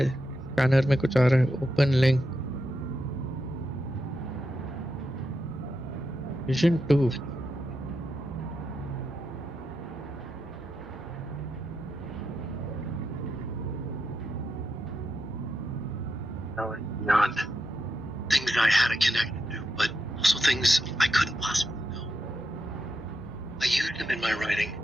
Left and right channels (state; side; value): normal; both; correlation 0.86